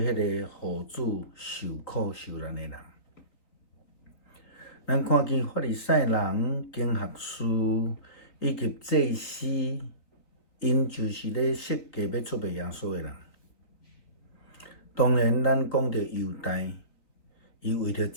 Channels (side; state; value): right; late; 4.1 ms